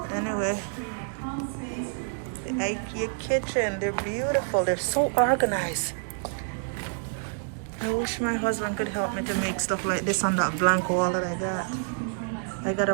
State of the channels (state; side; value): silent; left; digital silence